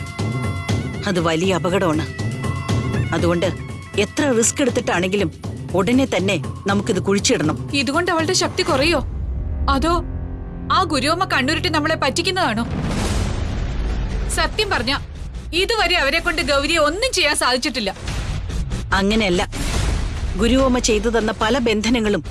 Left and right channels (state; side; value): identical; both; correlation 1.00